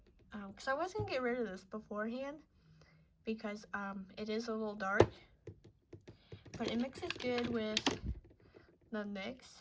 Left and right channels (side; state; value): both; identical; correlation 1.00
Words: I was going to get rid of this beforehand, because it is a little dark, but it mixes good with the